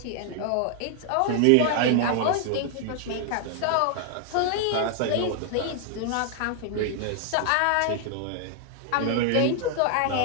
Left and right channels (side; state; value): both; different; correlation 0.00